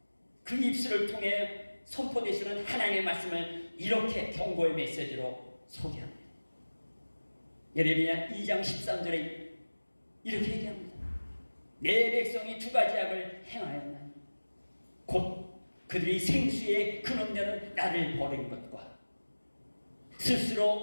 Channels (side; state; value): both; inverted; correlation -1.00